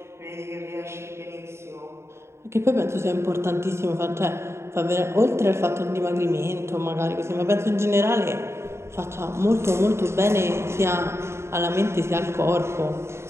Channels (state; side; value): late; left; 0.13 ms